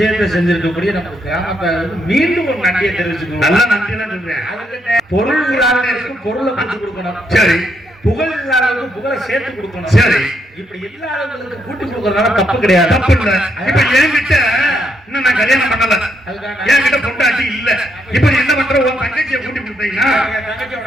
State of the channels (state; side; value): normal; both; correlation 0.76